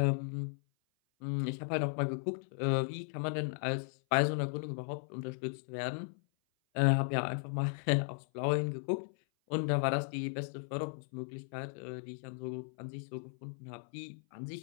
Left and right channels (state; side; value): silent; right; 54 dB below the other